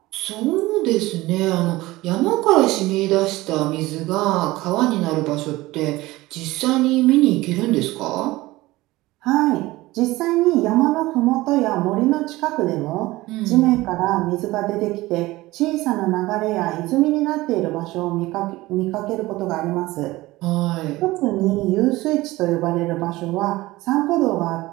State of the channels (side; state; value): left; quieter; 19.0 dB